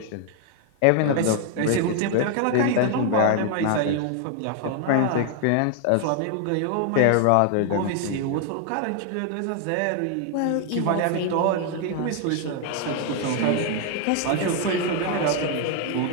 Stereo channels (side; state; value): both; different; correlation 0.00